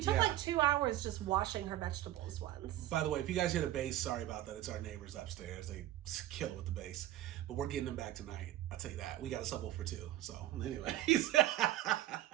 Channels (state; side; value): quieter; left; 14.1 dB